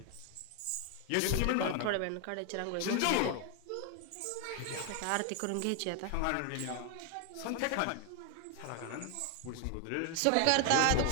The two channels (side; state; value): both; different; correlation 0.01